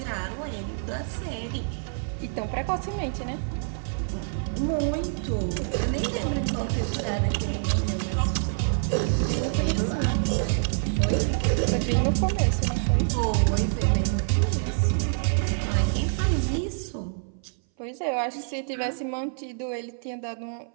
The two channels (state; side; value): silent; left; 58 dB below the other